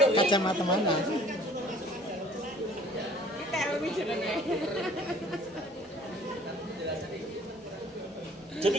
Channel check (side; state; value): both; normal; correlation 0.53